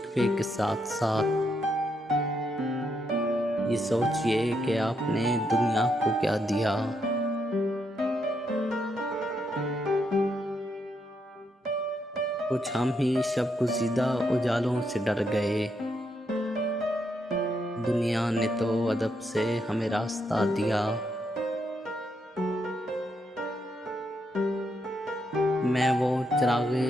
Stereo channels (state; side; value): normal; both; correlation 0.79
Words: के साथ साथ ये सोचिए कि आपने दुनिया को क्या दिया। कुछ हम ही शब गुज़ीदा उजालों से डर गए। दुनिया ने तो अदब से हमें रास्ता दिया। मैं वो चिरागे